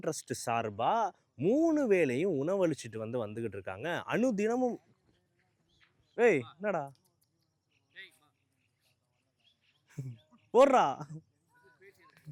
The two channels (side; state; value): both; identical; correlation 1.00